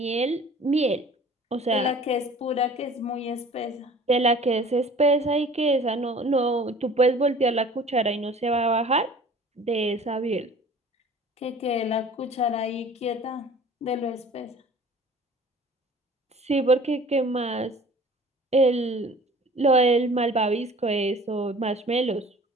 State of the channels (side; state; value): both; normal; correlation 0.47